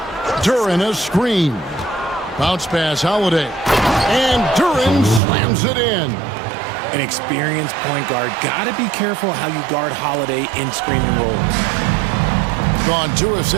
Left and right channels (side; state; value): left; drops out; at 5.2 s